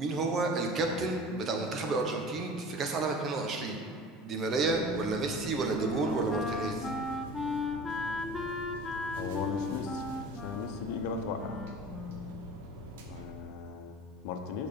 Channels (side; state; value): both; normal; correlation 0.39